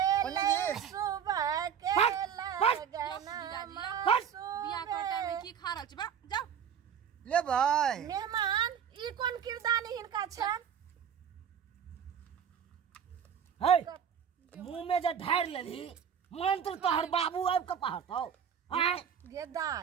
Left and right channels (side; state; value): left; quieter; 8.1 dB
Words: जी सुबह के लगन बियाह के टाइम में की खा रहल छी। जाओ ले भाई मेहमान ई कोन किरदानी हिनका छन। मुंह में जे ढार लेली मंत्र तोहर बाबू आब के पढ़तौ।